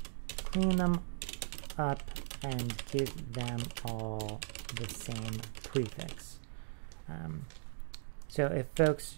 clean them up and give them all the same prefix. So if folks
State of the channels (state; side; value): silent; left; digital silence